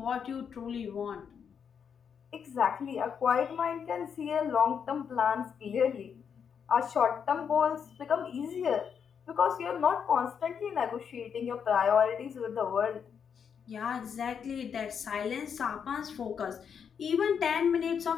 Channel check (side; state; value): right; quieter; 7.2 dB